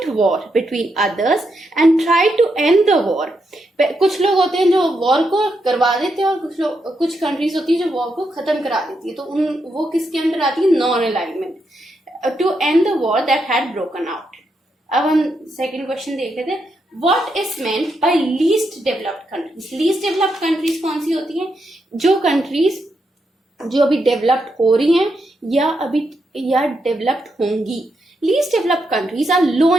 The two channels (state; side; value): normal; both; correlation 0.82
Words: war between others and try to end the war. कुछ लोग होते हैं जो वॉर को करवा देते हैं और कुछ कंट्रीज होती है जो वॉर को खत्म करा देती है. तो वो किसके अंदर आती है? Non alignment, to end the war that had broken out. अब हम सेकेंड क्वेश्चन देख लेते हैं. What is meant by least developed countries? Least developed countries कौन सी होती हैं? जो कंट्रीज जो अभी डेवलप्ड हो रही हैं या डेवलप्ड होंगी. Least developed countries are low